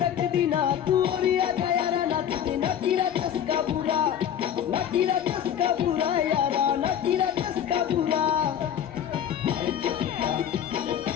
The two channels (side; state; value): right; quieter; 9.5 dB